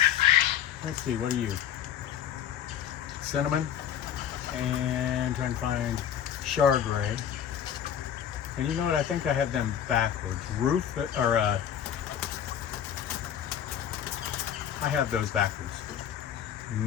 let's see, what are you? Cinnamon, and trying to find Chardray. And you know what? I think I have them backwards. I have those backwards.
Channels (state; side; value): quieter; right; 9.5 dB